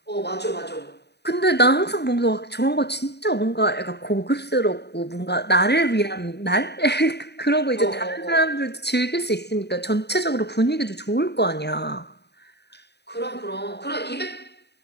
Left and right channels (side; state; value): right; late; 0.49 ms